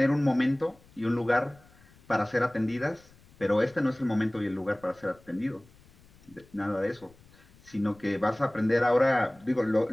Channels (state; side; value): noise; left; rumble, 27 dB below the sound